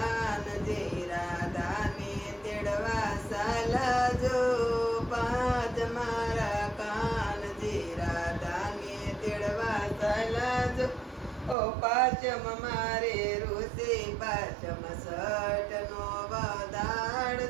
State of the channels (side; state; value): left; drops out; at 11.6 s